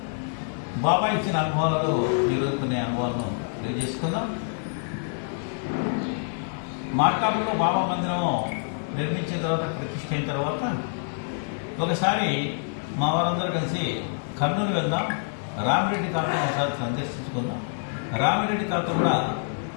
బాబా ఇచ్చిన అనుభవాలలో ఈరోజు కొన్ని అనుభవాలను తెలియజేసుకుందాం. మార్కాపురంలో బాబా మందిరం నిర్మించిన తర్వాత, ప్రతిష్ఠ అయిన తర్వాత ఒకసారి మా వారందరూ కలిసి కర్నూలు వెళ్దాం, రామిరెడ్డి తాతను ఒకసారి సందర్శించుకుందాం. రామిరెడ్డి తాత కూడా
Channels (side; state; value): right; silent; digital silence